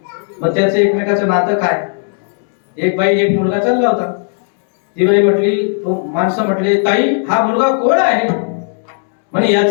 मग त्याचं एकमेकाचं नातं काय? एक बाई एक मुलगा चालला होता. ती बाई म्हटली, तो माणसं म्हटले, ताई हा मुलगा कोण आहे? म्हणजे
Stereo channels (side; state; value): right; silent; 60 dB below the other